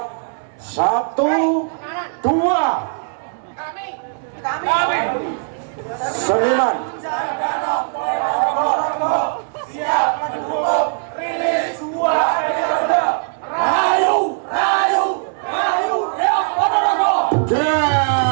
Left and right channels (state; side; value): silent; left; 66 dB below the other